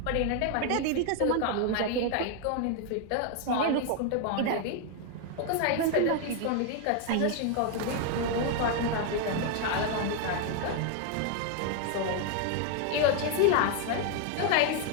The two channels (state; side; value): different; both; correlation 0.00